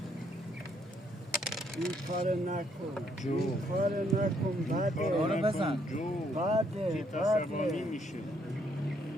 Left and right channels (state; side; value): normal; both; correlation 0.70